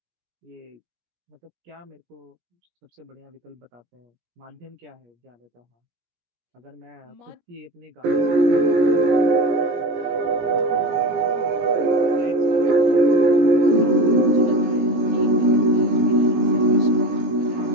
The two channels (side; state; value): left; late; 17 ms